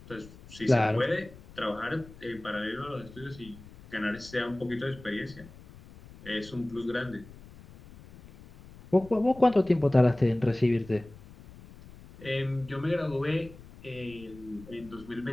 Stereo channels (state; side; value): noise; left; rumble, 19 dB below the sound